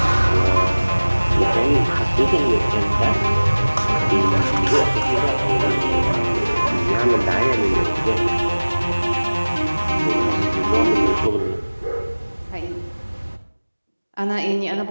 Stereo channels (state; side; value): inverted; both; correlation -1.00